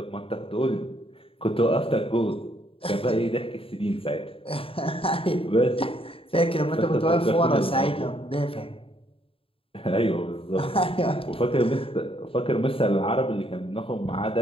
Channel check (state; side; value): late; right; 0.27 ms